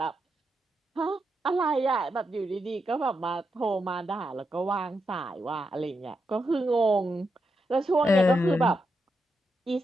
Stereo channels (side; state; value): both; normal; correlation 0.84